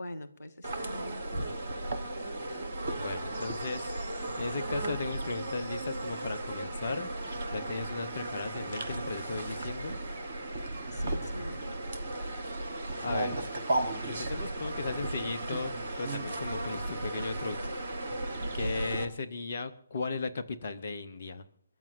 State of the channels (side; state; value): both; inverted; correlation -0.81